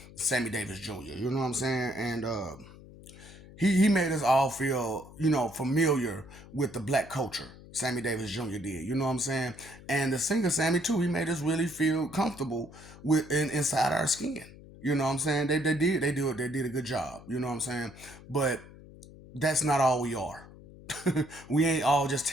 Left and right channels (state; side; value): noise; left; hum, 19 dB below the sound